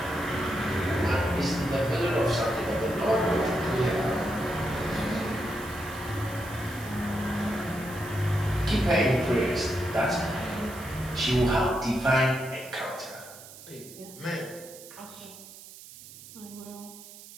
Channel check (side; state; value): right; noise; hiss, 17 dB below the sound